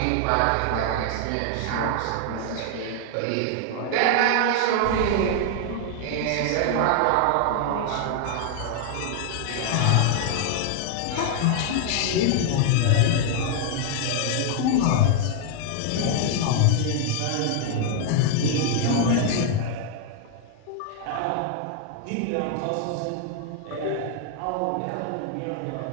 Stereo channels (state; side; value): different; both; correlation 0.00